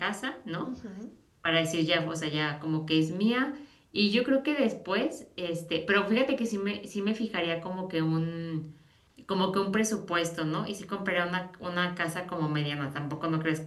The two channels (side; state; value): both; identical; correlation 1.00